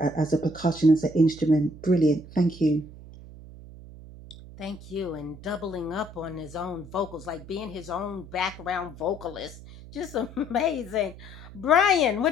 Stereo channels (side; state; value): right; noise; hum, 17 dB below the sound